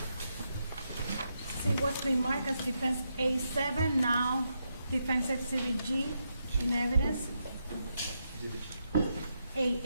See what's been marked as defense A7, now defense exhibit G in evidence.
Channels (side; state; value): both; inverted; correlation -0.83